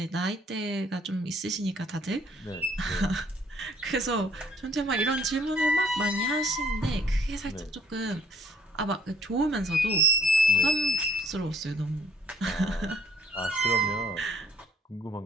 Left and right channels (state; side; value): normal; both; correlation 0.60